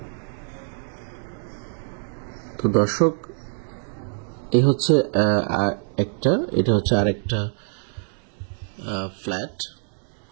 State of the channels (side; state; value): left; silent; 62 dB below the other